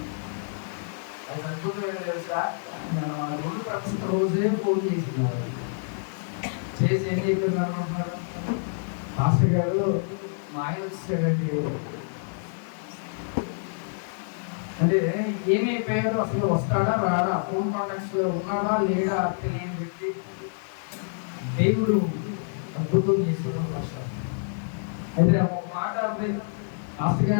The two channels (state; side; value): silent; right; digital silence